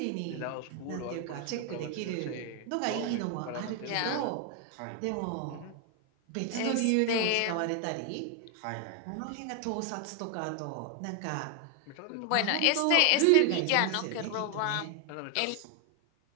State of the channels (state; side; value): different; both; correlation 0.00